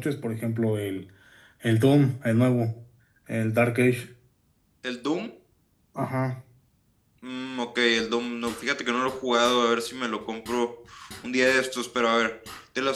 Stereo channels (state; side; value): identical; both; correlation 1.00